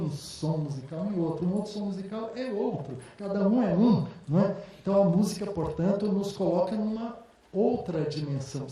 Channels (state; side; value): identical; both; correlation 1.00